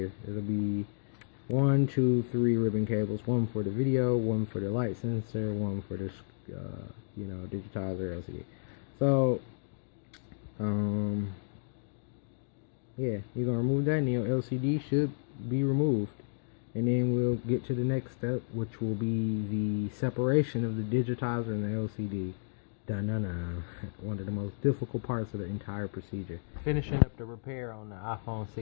It'll be 1, 2, 3 ribbon cables, one for the video, one for the light sensor, one for the digitizer LCD. So yeah, you're gonna remove that, and your LCD should be removed. And then we'll get to the next step, which will be the separation of the digitizer and the LCD. Dun-dun-dun. One of the most difficult parts of the entire procedure. Finishing up the repair on the iPhone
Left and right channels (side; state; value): right; silent; digital silence